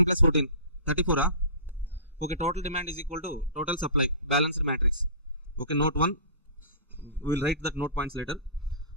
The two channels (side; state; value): both; inverted; correlation -0.37